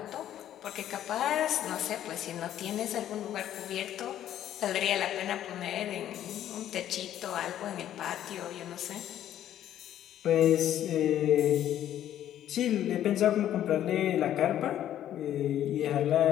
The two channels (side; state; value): right; quieter; 11.5 dB